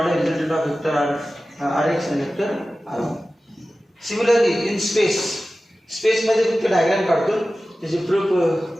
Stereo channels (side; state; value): both; normal; correlation 0.95